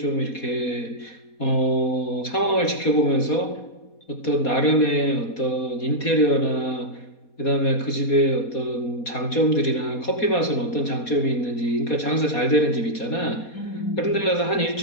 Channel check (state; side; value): late; right; 4.2 ms